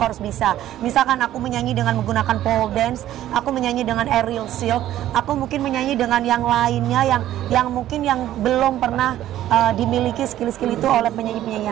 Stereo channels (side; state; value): left; quieter; 13.0 dB